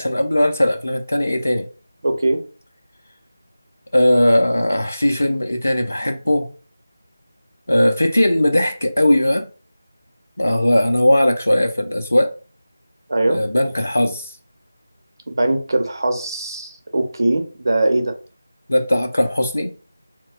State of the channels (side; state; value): both; inverted; correlation -0.97